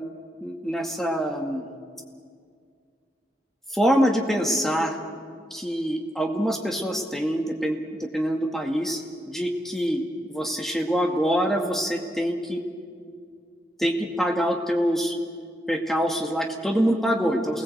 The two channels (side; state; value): both; normal; correlation 0.82